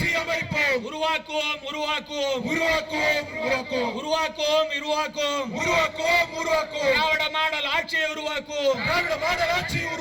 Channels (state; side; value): identical; both; correlation 1.00